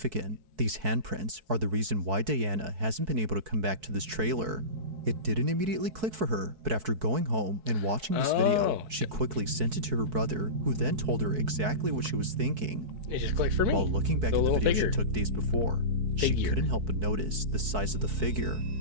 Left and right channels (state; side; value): late; left; 4.6 ms